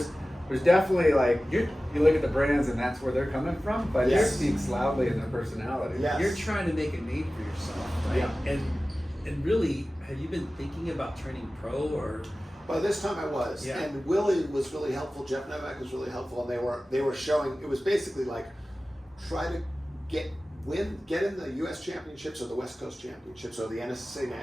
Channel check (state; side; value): normal; both; correlation 0.96